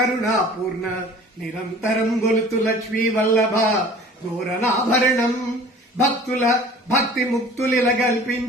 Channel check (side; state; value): both; normal; correlation 0.46